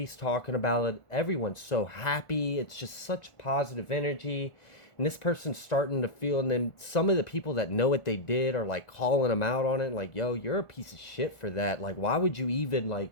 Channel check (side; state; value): right; late; 1.4 ms